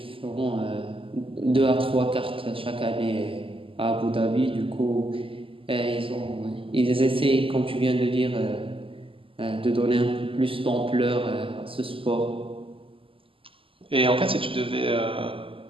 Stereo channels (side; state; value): left; late; 0.26 ms